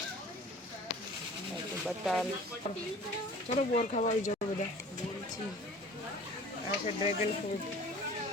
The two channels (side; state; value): both; normal; correlation 0.45